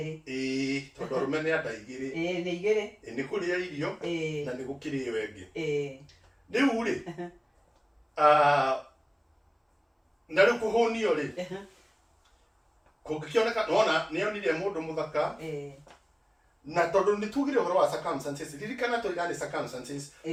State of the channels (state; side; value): identical; both; correlation 1.00